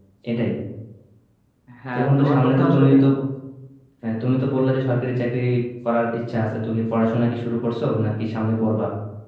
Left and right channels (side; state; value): both; identical; correlation 1.00